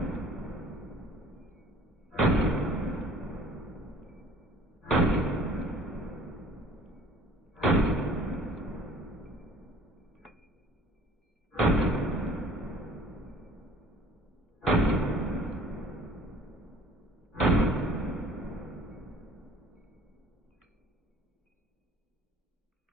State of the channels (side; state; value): both; normal; correlation 0.51